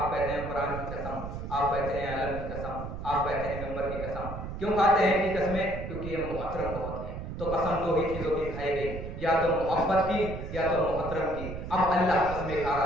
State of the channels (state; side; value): noise; right; rumble, 8 dB below the sound